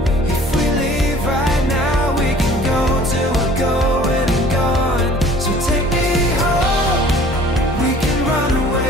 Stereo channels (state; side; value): normal; both; correlation 0.50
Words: If we leave right now, we can go till we're going and gone. So take me home. We can run